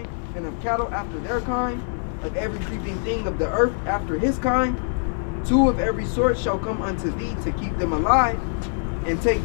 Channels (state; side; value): silent; right; 57 dB below the other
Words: and of cattle after their kind, of every creeping thing of the earth after his kind. 2 of every sort shall come unto thee to keep them alive. And take